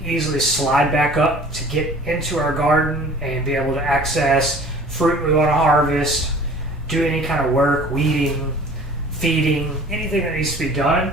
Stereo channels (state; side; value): normal; both; correlation 0.47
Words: easily slide back up to get into our garden and be able to access fruit we want to harvest, do any kind of work, weeding, feeding, anything that needs to be done.